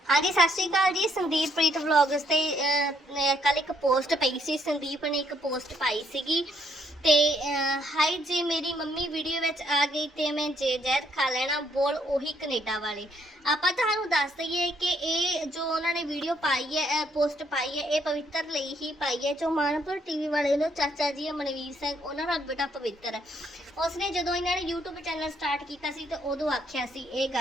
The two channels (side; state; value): both; normal; correlation 0.71